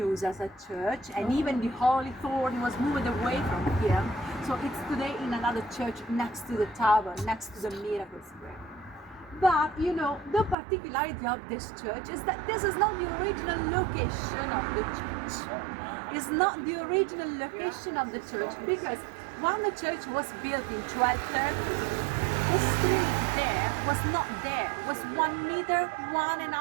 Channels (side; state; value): left; drops out; at 10.6 s